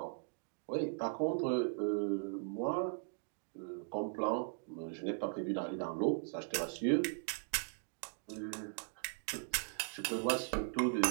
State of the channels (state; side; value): silent; left; digital silence